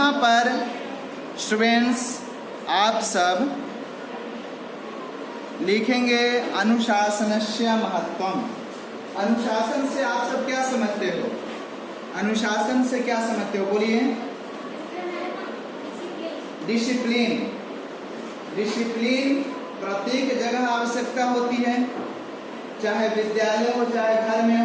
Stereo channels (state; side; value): identical; both; correlation 1.00